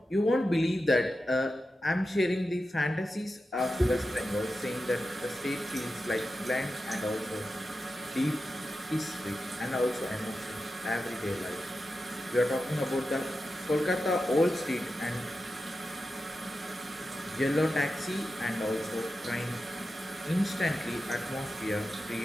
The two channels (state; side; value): normal; both; correlation 0.91